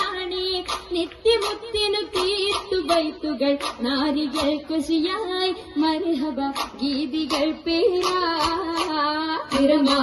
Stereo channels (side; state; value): both; identical; correlation 1.00